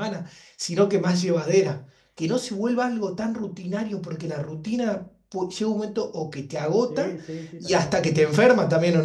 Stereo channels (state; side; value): identical; both; correlation 1.00